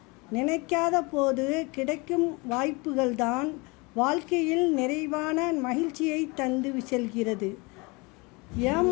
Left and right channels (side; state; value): right; quieter; 27.1 dB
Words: நினைக்காத போது கிடைக்கும் வாய்ப்புகள்தான் வாழ்க்கையில் நிறைவான மகிழ்ச்சியை தந்து செல்கிறது.